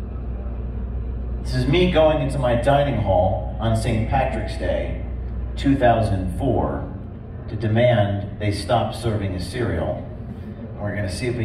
This is me going into my dining hall on St. Patrick's Day, 2004, to demand they stop serving a cereal. We're going to see if we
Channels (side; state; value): both; identical; correlation 1.00